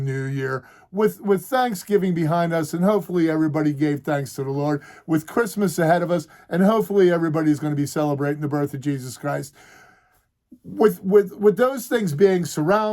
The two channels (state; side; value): identical; both; correlation 1.00